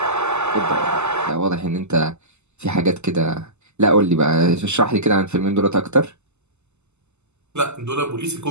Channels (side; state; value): left; late; 0.82 ms